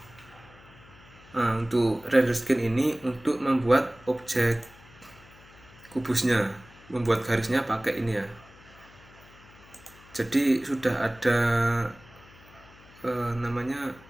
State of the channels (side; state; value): left; noise; hum, 24 dB below the sound